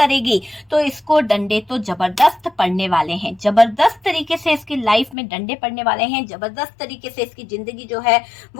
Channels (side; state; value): right; drops out; at 5.2 s